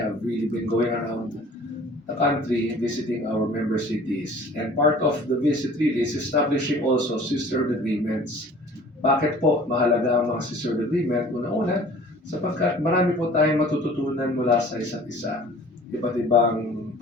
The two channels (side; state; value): both; normal; correlation 0.48